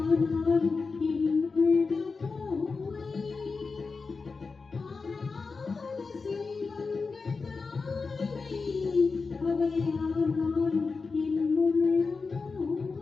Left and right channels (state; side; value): quieter; right; 4.5 dB